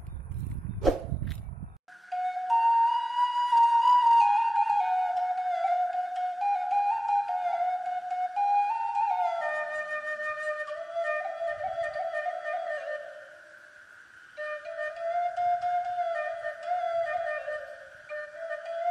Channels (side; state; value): both; normal; correlation 0.97